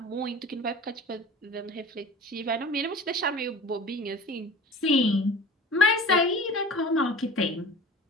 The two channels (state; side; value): normal; both; correlation 0.40